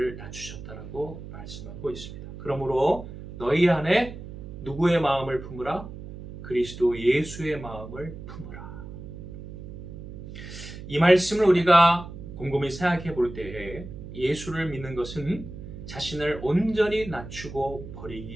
낮추셨다라고 말씀하고 있습니다. 그러므로 너희 안에 누구의 마음을 품으라? 그리스도 예수의 마음을 품으라. 이 말씀을 우리가 곰곰이 생각해 볼 때에 예수를 믿는 것은 자신을 온전히 낮추고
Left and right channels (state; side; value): noise; right; hum, 12 dB below the sound